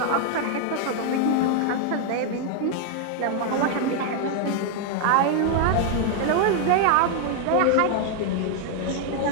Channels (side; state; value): both; different; correlation 0.00